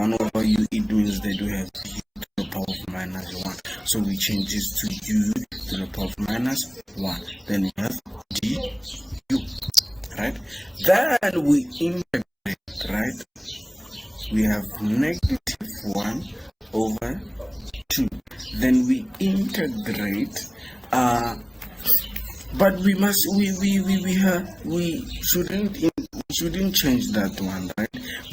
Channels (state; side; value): identical; both; correlation 1.00